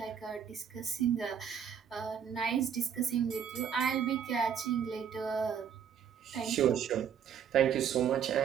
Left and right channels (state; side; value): quieter; left; 8.0 dB